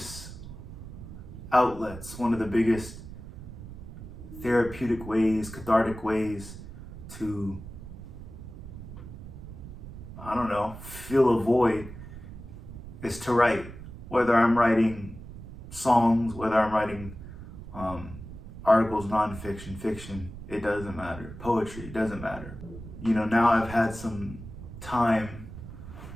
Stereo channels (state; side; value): noise; right; rumble, 13 dB below the sound